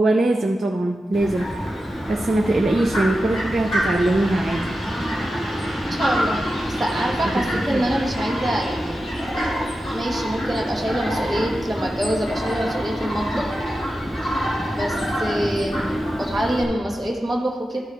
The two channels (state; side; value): normal; both; correlation 0.91